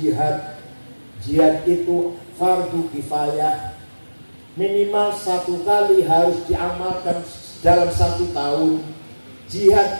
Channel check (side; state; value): both; inverted; correlation -1.00